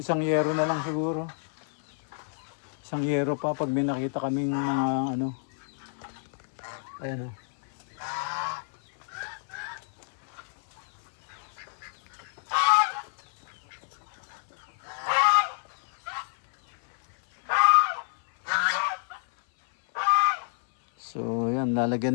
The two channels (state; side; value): silent; right; 59 dB below the other